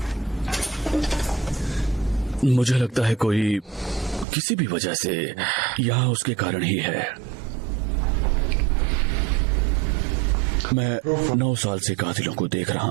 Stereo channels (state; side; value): drops out; left; at 4.2 s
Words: मुझे लगता है कोई किसी भी वजह से यहाँ उसके कारण ही है। मैं 9 साल से कातिलों को देख